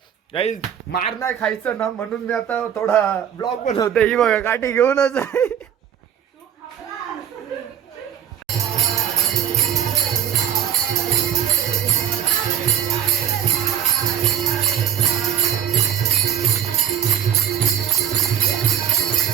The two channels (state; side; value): quieter; left; 9.6 dB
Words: गाईज मार नाही खायचं ना म्हणून मी आता थोडा ब्लॉग बनवते. ही बघा काठी घेऊनच आहे.